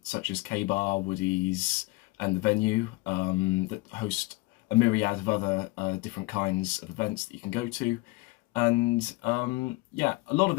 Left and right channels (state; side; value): quieter; right; 22.3 dB